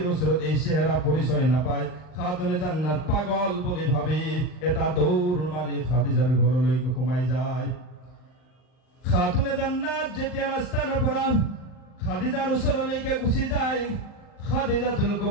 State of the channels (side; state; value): right; late; 39 ms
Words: ওচৰত এই চেহারা পরিচয় নাপায়। খাতুনে জান্নাত পাগল বুলি ভাবি এটা দৌড় মাৰি খাদিজাৰ ঘৰলৈকে সোমাই যায়। খাতুনে জান্নাত যেতিয়া ৰাস্তাৰ পৰা খাদিজাৰ ওচৰলৈকে গুচি যায়, খাদিজাতুল